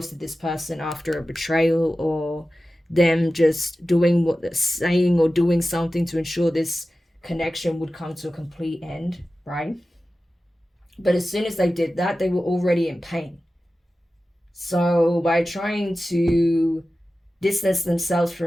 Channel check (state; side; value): normal; both; correlation 0.95